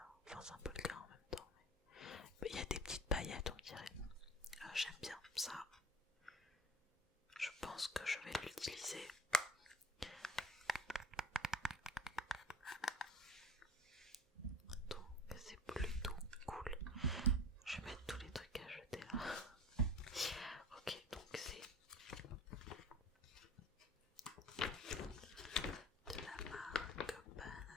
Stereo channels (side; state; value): both; normal; correlation 0.39